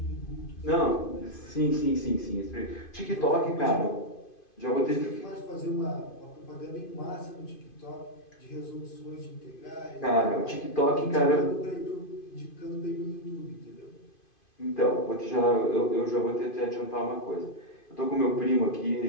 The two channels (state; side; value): late; right; 2.5 ms